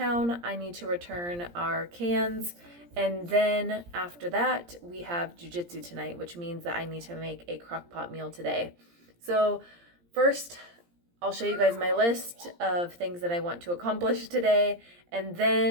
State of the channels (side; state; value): left; late; 17 ms